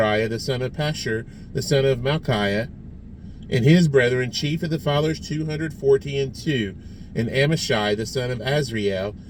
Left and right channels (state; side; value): identical; both; correlation 1.00